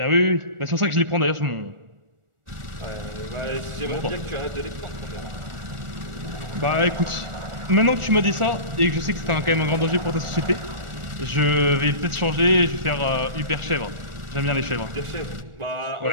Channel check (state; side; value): late; left; 1.4 ms